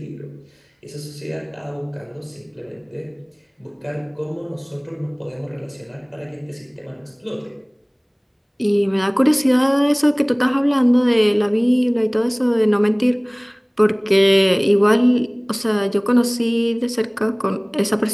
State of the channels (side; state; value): both; identical; correlation 1.00